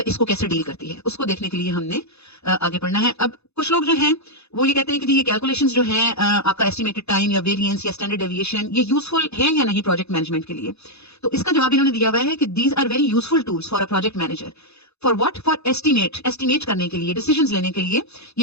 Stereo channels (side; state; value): right; late; 0.80 ms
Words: इसको कैसे डील करती है उसको देखने के लिए हमने आगे पढ़ना है। अब कुछ लोग जो हैं वो ये कहते हैं कि ये कैलकुलेशंस जो हैं आपका एस्टिमेटेड टाइम या वेरिएंस या स्टैंडर्ड डेविएशन ये यूजफुल है या नहीं प्रोजेक्ट मैनेजमेंट के लिए। तो इसका जवाब इन्होंने दिया हुआ है कि these are very useful tools for a project manager. For what? For estimate करने के लिए, डिसीजंस लेने के लिए